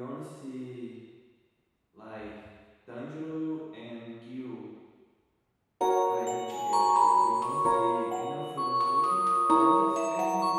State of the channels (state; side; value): identical; both; correlation 1.00